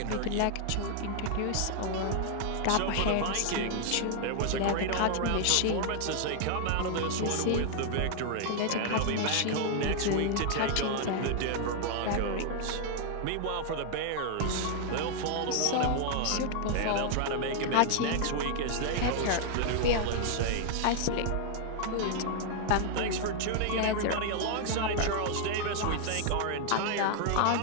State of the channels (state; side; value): different; both; correlation 0.00